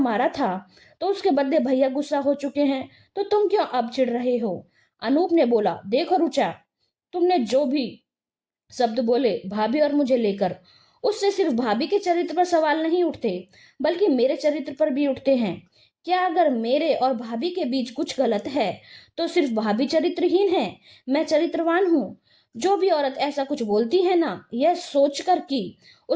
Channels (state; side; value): identical; both; correlation 1.00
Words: था तो उसके बदले भैया गुस्सा हो चुके हैं, तो तुम क्यों अब चिढ़ रहे हो? अनूप ने बोला, देखो रुचा, तुमने जो भी शब्द बोले भाभी और मुझे लेकर, उससे सिर्फ भाभी के चरित्र पर सवाल नहीं उठते बल्कि मेरे चरित्र पर भी उठते हैं। क्या अगर मेरे और भाभी के बीच कुछ गलत है तो सिर्फ भाभी चरित्रहीन है, मैं चरित्रवान हूँ? जो भी औरत ऐसा कुछ बोलती है ना, यह सोचकर कि